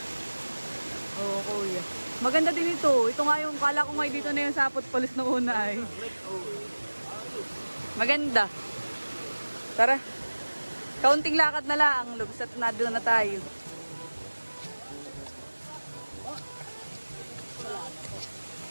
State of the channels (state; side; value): inverted; both; correlation -1.00